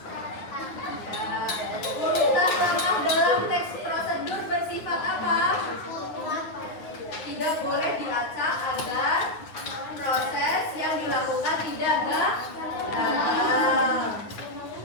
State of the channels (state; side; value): late; right; 9.6 ms